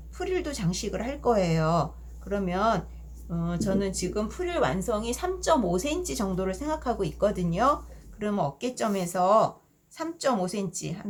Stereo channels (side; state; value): both; identical; correlation 1.00